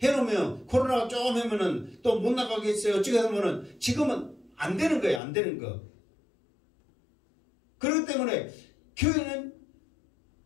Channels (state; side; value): drops out; right; at 5.2 s